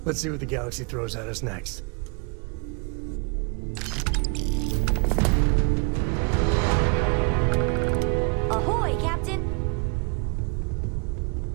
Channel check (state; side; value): quieter; left; 31.4 dB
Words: Let's see what the galaxy throws at us next. Ahoy, Captain!